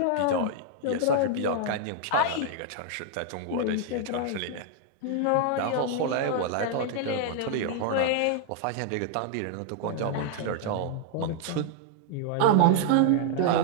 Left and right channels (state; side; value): different; both; correlation 0.00